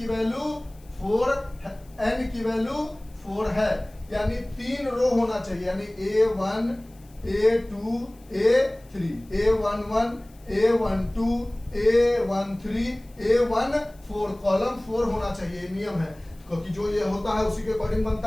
वैल्यू 4 है, n की वैल्यू 4 है, यानी 3 रो होना चाहिए, यानी A1 A2 A3 A11 A12 A13 A14, column 4 होना चाहिए, नियम है, क्योंकि जो ये होता है उसी के अकॉर्डिंग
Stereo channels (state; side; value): noise; left; hiss, 29 dB below the sound